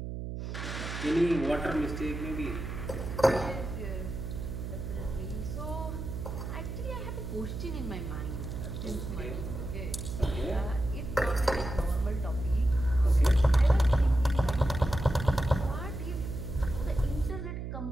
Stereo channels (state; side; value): noise; right; hum, 6 dB below the sound